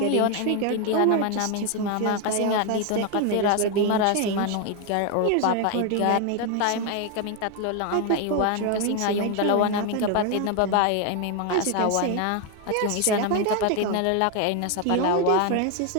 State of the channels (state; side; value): different; both; correlation 0.01